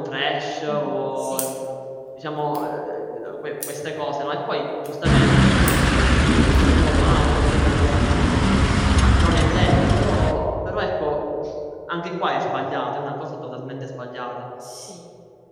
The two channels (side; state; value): both; identical; correlation 1.00